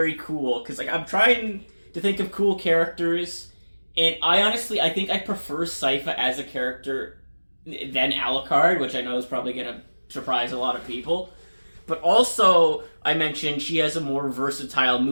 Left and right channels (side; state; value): both; inverted; correlation -1.00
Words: cool, because like I'm trying to think of cool characters, and I think I prefer Sypha as a character than Alucard, which I know is probably going to surprise a lot of people. But also, I mentioned she has a more versatile